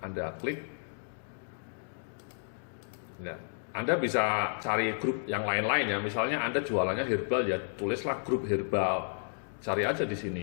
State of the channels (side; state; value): right; silent; digital silence